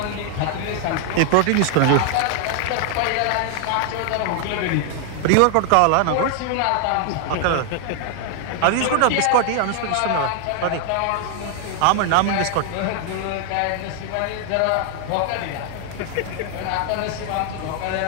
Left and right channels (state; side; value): different; both; correlation 0.00